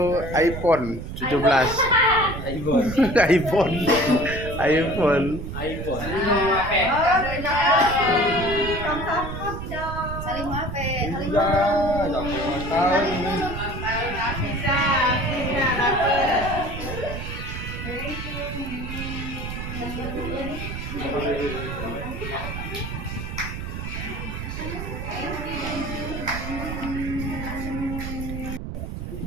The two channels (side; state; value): right; noise; rumble, 6 dB below the sound